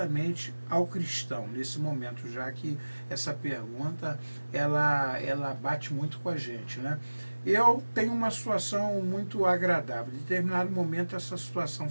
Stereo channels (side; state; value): both; inverted; correlation -1.00